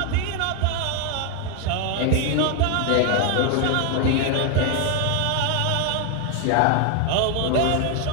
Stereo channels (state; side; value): different; both; correlation 0.01